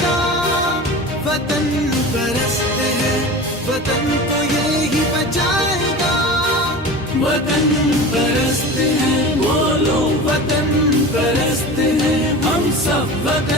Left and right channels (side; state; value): both; normal; correlation 0.33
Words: گا، وطن پرست ہے وطن کو یہی بچائے گا. وطن پرست ہے بولو وطن پرست ہے، ہم سب